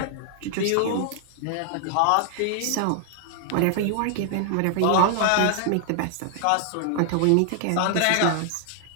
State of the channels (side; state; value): both; different; correlation 0.00